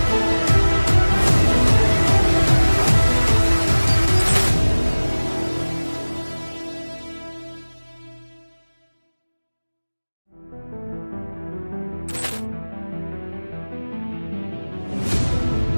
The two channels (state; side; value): inverted; both; correlation -1.00